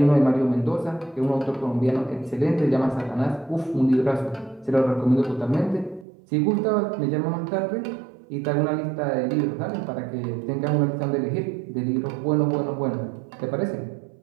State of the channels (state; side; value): drops out; left; at 6.1 s